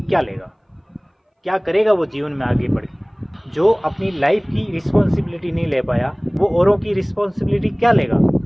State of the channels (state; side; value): identical; both; correlation 1.00